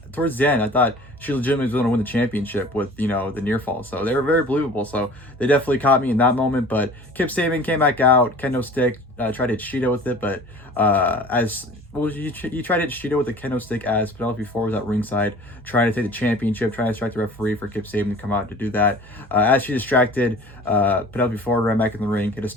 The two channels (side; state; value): both; normal; correlation 0.44